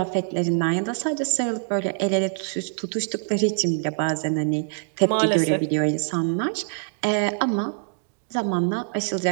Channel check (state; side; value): silent; left; digital silence